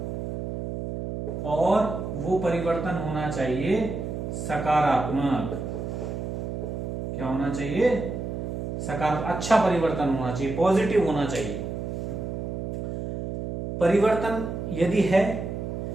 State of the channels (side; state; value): right; noise; hum, 5 dB below the sound